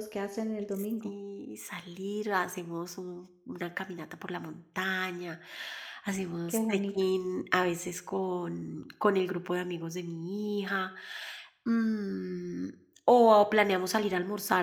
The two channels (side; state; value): both; identical; correlation 1.00